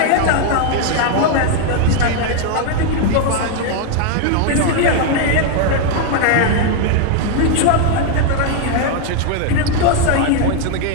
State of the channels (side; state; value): both; different; correlation 0.01